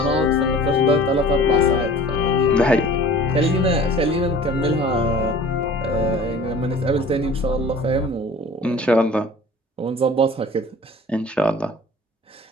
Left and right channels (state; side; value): normal; both; correlation 0.45